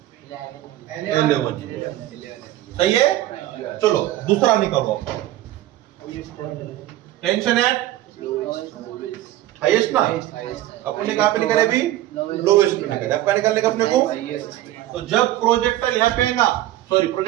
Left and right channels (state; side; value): quieter; left; 14.6 dB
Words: 11. सही है. चलो दूसरा निकालो. टेंशन एट हाईएस्ट ना, अपन ने कहां पे निकाले अभी, लोएस्ट पे निकाले. आपका निकालने का अपने को. तो जब प्रोजेक्टाइल यहाँ पे आएगा, सॉरी